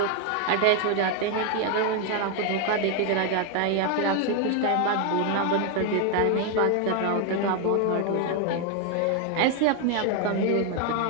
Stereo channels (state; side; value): different; both; correlation 0.01